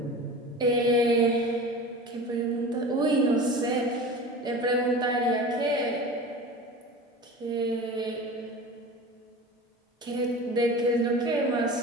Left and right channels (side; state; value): both; normal; correlation 0.35